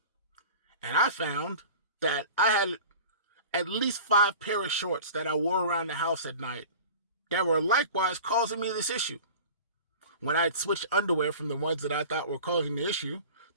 And I found that I had at least 5 pair of shorts that I wore around the house at night that were likewise causing me this issue. When I'd switched underwear from the ones that I thought were causing the issue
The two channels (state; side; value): inverted; both; correlation -0.38